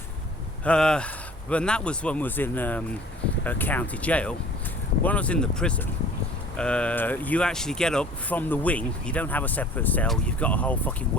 When that was when I was in a county jail. When I was in the prison, you actually get up from the wing. You don't have a separate cell. You've got a whole fucking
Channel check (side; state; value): both; normal; correlation 0.48